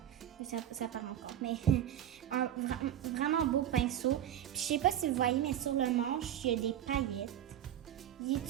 Ça part encore. Mais vraiment beau pinceau. Puis, je sais pas si vous voyez, mais sur le manche, il y a des paillettes. Il est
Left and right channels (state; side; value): quieter; left; 11.1 dB